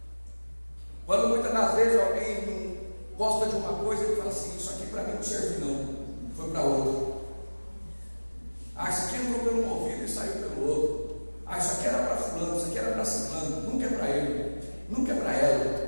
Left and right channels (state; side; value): inverted; both; correlation -1.00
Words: Quando muitas das vezes alguém não gosta de uma coisa, ele fala assim: isso aqui para mim não serve não, foi para outro. Ah, isso aqui entrou pelo um ouvido e saiu pelo outro. Ah, isso aqui era para fulano, isso aqui era para ciclano. Nunca é para ele, nunca é para